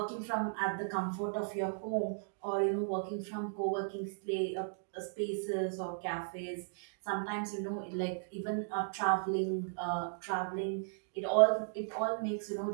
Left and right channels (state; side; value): silent; left; digital silence